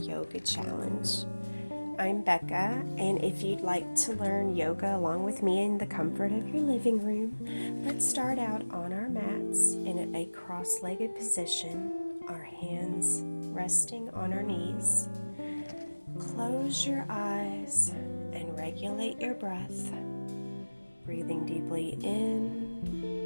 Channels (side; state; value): both; inverted; correlation -1.00